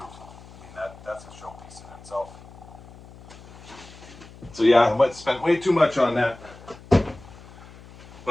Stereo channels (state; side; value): noise; left; hum, 19 dB below the sound